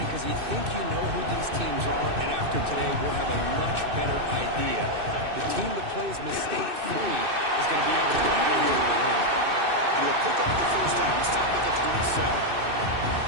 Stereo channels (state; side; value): late; left; 2.6 ms